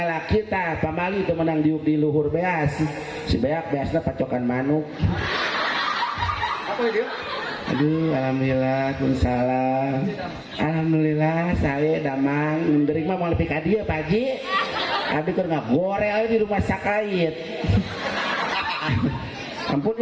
tah pamali teu menang diuk di luhur beas. Si beak beasna pacokan manuk. Apa dia? Aduh, alhamdulillah, salam. Alhamdulillah, saya damang. Menderik mah mau lebih ka dieu, Pak Haji. Abi keur ngagorel di rumah sakait. Ampun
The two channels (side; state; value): both; identical; correlation 1.00